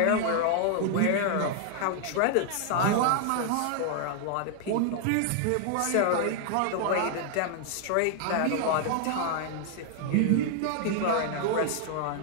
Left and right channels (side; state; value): both; different; correlation 0.00